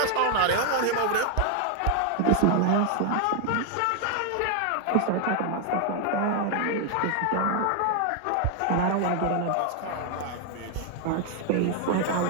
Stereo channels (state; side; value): different; both; correlation 0.00